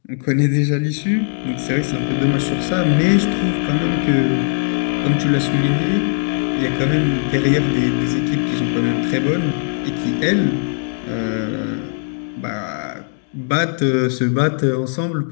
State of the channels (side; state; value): right; silent; digital silence